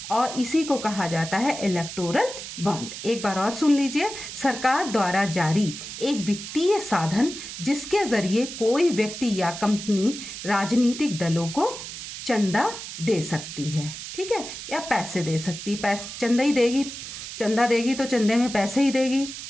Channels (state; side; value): noise; right; hiss, 9 dB below the sound